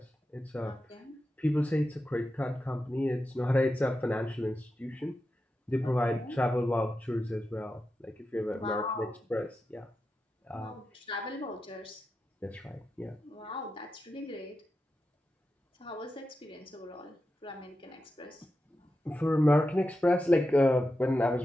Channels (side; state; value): both; normal; correlation 0.90